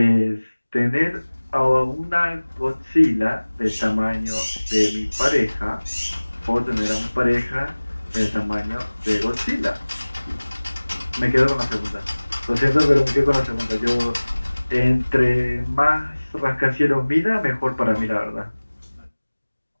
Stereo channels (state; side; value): inverted; both; correlation -1.00